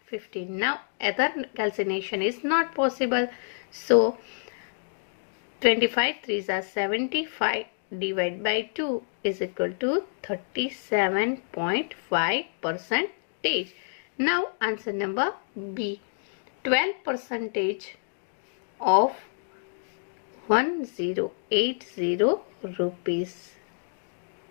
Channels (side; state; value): right; silent; digital silence